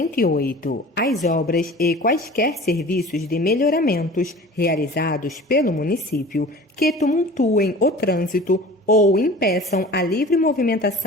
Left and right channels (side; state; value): both; normal; correlation 0.41